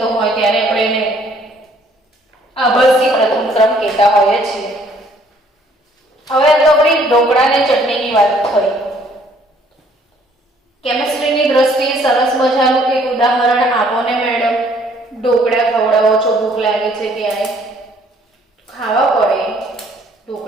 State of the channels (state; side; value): normal; both; correlation 0.61